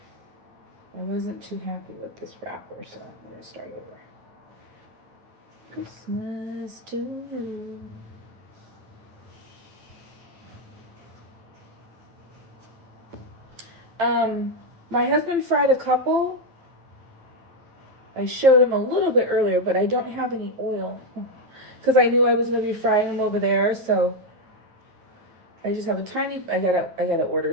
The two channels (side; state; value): left; late; 9.0 ms